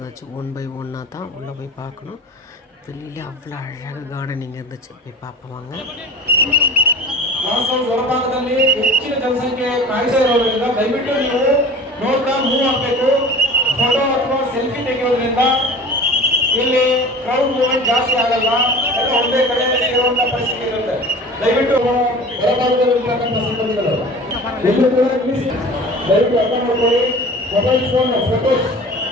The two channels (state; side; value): normal; both; correlation 0.39